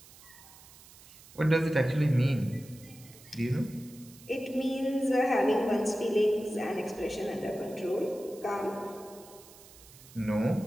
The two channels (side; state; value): right; noise; hiss, 21 dB below the sound